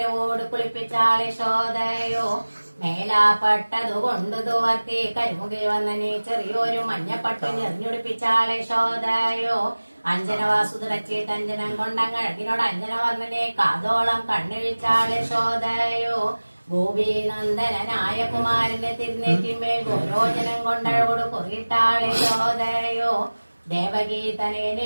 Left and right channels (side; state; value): both; inverted; correlation -1.00